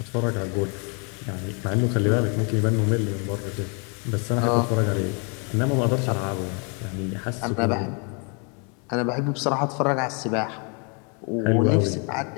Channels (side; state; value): right; quieter; 36.1 dB